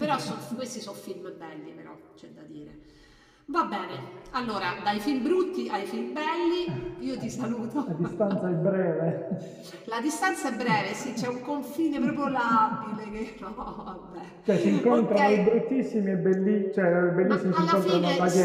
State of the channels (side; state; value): both; identical; correlation 1.00